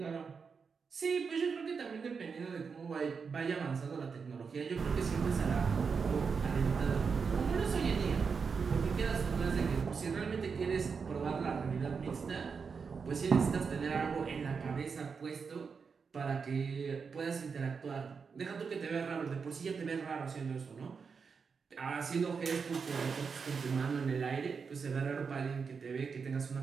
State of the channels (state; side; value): quieter; left; 5.6 dB